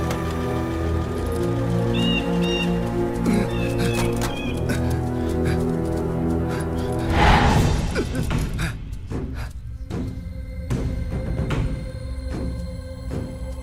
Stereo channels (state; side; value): identical; both; correlation 1.00